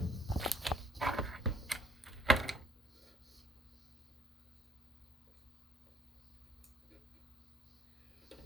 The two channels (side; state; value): both; normal; correlation 0.62